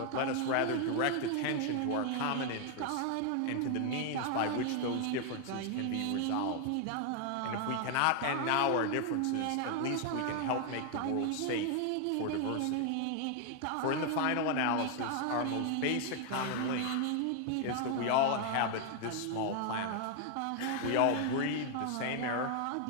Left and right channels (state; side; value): different; both; correlation 0.00